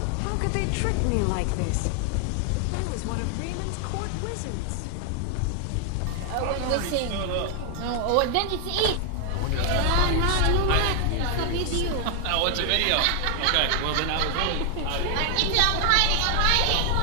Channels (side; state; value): both; different; correlation 0.00